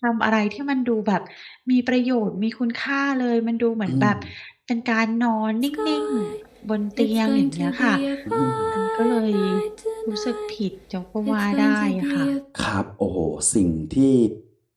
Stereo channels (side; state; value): both; identical; correlation 1.00